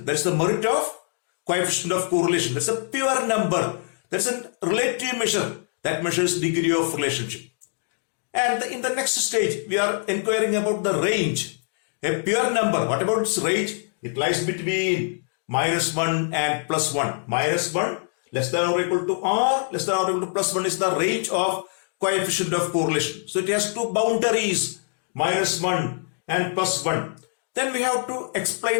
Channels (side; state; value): right; silent; 62 dB below the other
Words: That's the merit of coefficient of correlation. That's a pure number. That's a relative measure. That measures degree of relationship. And in the next stage, we are inquiring about the range. A pure number, what about its range? It lies between -1 and +1. -1 less than or equal to R, less than or equal to +1 is the range of coefficient of correlation. So it has two boundaries, -1 and +1. Then we have to